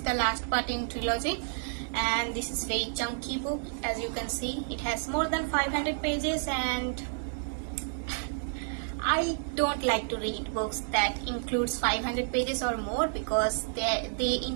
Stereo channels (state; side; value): silent; left; digital silence